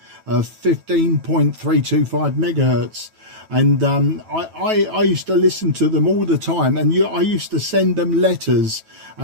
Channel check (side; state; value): left; late; 9.1 ms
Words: megahertz, and I used to listen to them all the time, and I used to send them letters,